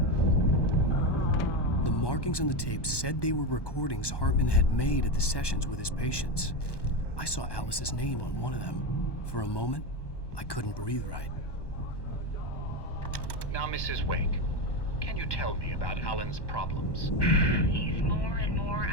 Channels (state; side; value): late; right; 1.1 ms